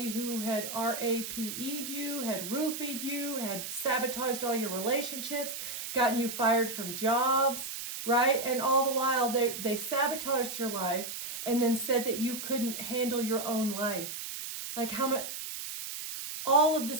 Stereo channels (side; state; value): right; noise; hiss, 7 dB below the sound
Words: who had RAPE'd you, had roofied you, had sabotaged all your relationships, gotten you fired from jobs, right? And all the while they sabotaged your life and then said that you couldn't handle your own life. Like, how much, all of the